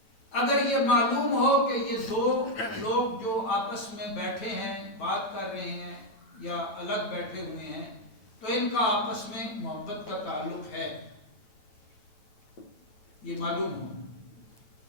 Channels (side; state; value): right; late; 9.1 ms